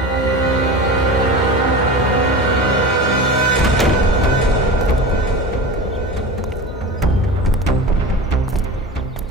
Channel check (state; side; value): normal; both; correlation 0.30